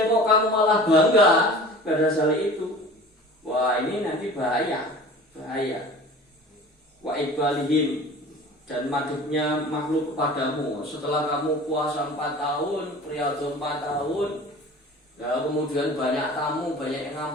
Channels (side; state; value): both; normal; correlation 0.41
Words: kamu malah bangga pada hal itu. Wah, ini nanti bahaya. Wa ibalihim, dan madhubnya makhluk kepadamu setelah kamu puasa 4 tahun, riyadhah 4 tahun. Ya, kemudian banyak tamu, banyak yang